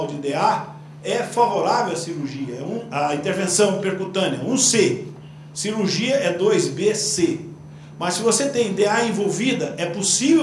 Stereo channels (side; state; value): both; identical; correlation 1.00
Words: de DA, é favorável à cirurgia, a intervenção percutânea, 1C. Cirurgia é 2BC. Mas se você tem DA envolvida, é